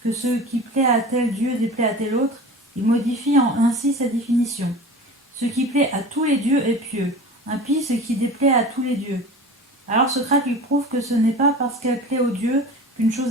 ce qui plaît à tel dieu déplaît à tel autre, il modifie ainsi sa définition. Ce qui plaît à tous les dieux est pieux, impie ce qui déplaît à tous les dieux. Alors Socrate lui prouve que ce n'est pas parce qu'elle plaît aux dieux qu'une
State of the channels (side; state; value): both; normal; correlation 0.36